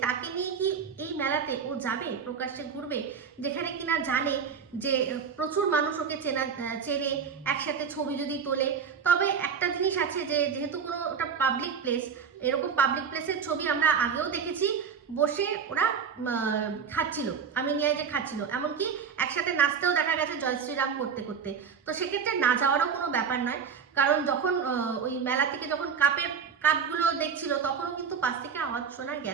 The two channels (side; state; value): left; quieter; 6.6 dB